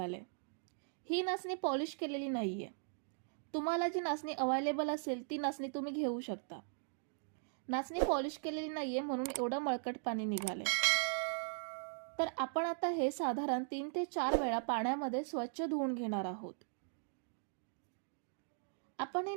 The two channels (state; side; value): silent; left; digital silence